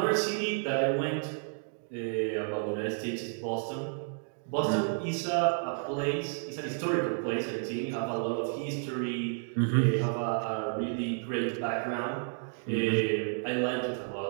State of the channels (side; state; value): left; silent; 57 dB below the other